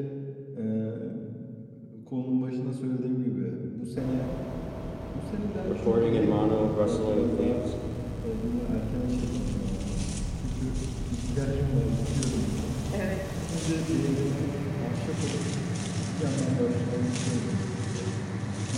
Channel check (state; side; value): identical; both; correlation 1.00